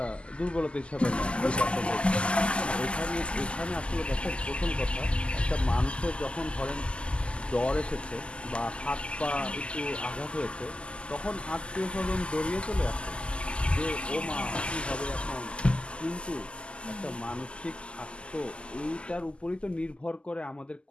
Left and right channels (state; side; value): late; right; 0.053 ms